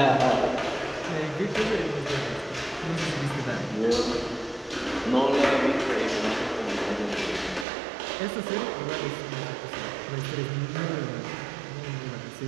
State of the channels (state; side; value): drops out; left; at 7.7 s